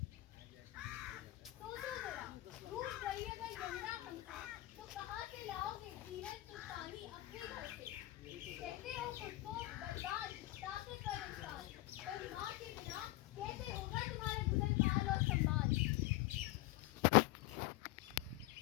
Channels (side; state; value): right; quieter; 18.1 dB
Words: सोचो जरा, रूठ गई अगर यमुना हमसे, तो कहाँ से लाओगे जीवन तुम पानी अपने घर से। कहते हो खुद को बर्बाद ताकतवर इंसान, पर माँ के बिना कैसे होगा तुम्हारा गुजर काल और सम्मान।